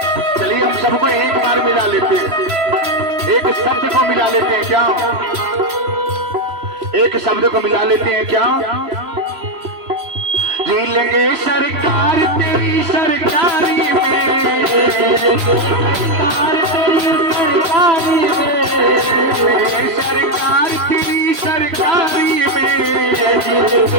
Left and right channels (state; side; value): late; left; 3.0 ms